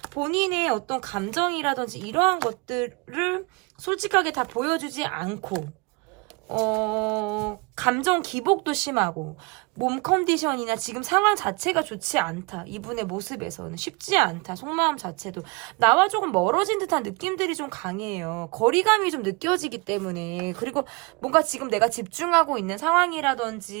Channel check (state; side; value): quieter; left; 29.3 dB